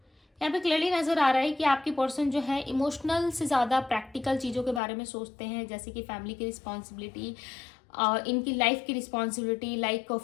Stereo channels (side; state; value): right; drops out; at 4.8 s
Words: पे क्लियरली नजर आ रहा है कि आपके पर्सन जो है इमोशनल से ज़्यादा प्रैक्टिकल चीज़ों के बारे में सोचते हैं, जैसे कि फैमिली की रिस्पॉन्सिबिलिटी, इनकी लाइफ की रिस्पॉन्सिबिलिटी, लाइक